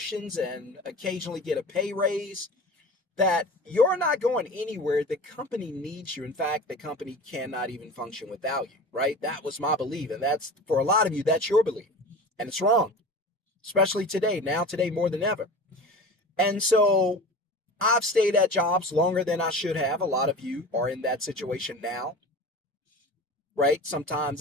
and occasionally get a pay raise, that you're not going anywhere. The company needs you. In fact, the company cannot even function without you, right? That was my belief. And that's, for a lot of you, that's your belief. And it's wrong, especially today, today more than ever. And so I've stayed at jobs longer than I should have. A lot of you are in that situation now, right? Sometimes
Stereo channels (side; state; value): both; normal; correlation 0.35